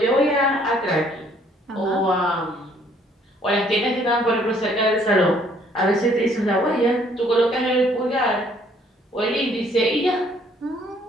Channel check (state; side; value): normal; both; correlation 0.63